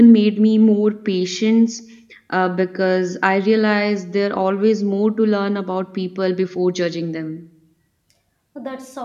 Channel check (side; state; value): both; identical; correlation 1.00